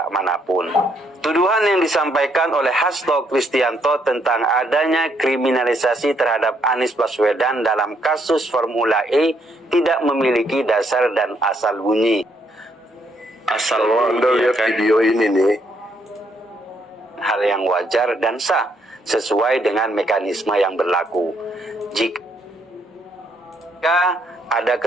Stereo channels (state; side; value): normal; both; correlation 0.72